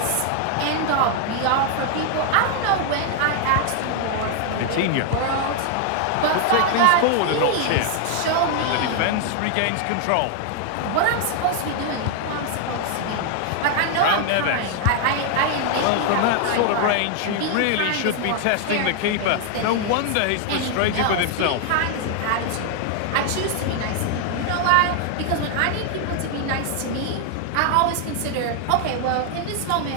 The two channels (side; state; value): both; different; correlation 0.00